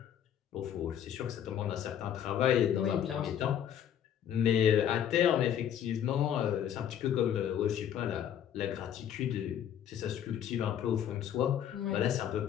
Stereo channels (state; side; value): quieter; right; 9.7 dB